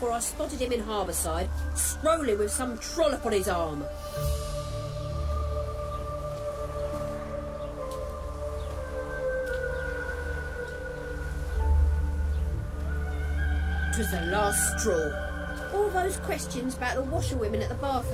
I spotted him in Harbourside, strolling with some trollop on his arm. It was the last straw. All those questions about the washerwomen at the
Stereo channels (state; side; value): identical; both; correlation 1.00